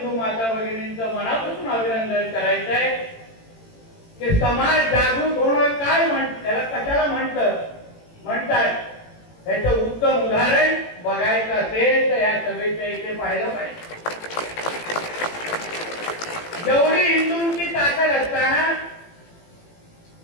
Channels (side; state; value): right; late; 18 ms